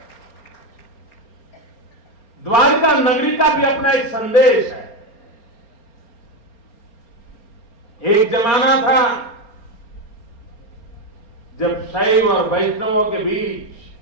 द्वारका नगरी का भी अपना एक संदेश है। एक जमाना था जब शैव और वैष्णवों के बीच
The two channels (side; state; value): right; late; 4.3 ms